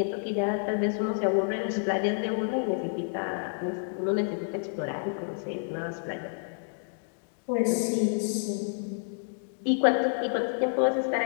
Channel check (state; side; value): silent; right; digital silence